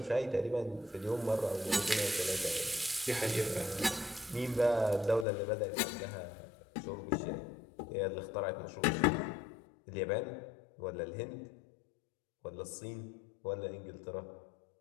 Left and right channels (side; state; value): right; drops out; at 5.2 s